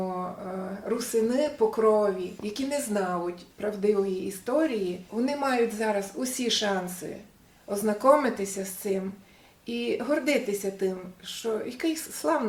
русини по крові, які не знають правдивої історії, вони мають зараз усі шанси ознайомитися з цим і гордитися тим, що який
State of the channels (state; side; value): identical; both; correlation 1.00